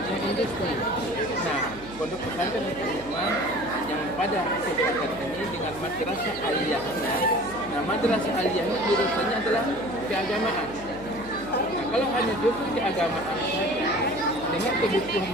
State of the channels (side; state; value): right; noise; hum, 17 dB below the sound